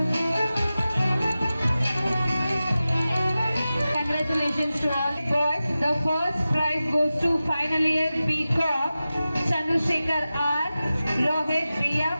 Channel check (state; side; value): inverted; both; correlation -0.95